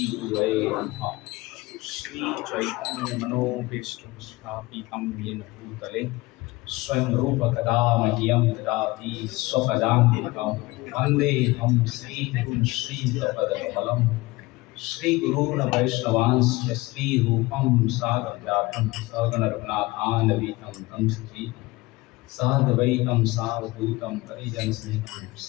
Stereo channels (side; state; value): right; quieter; 21.1 dB